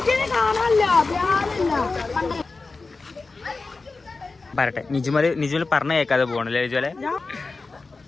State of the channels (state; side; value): quieter; right; 3.9 dB